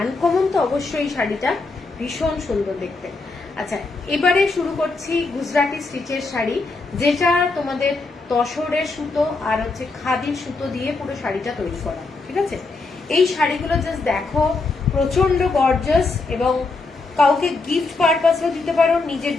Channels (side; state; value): right; quieter; 3.7 dB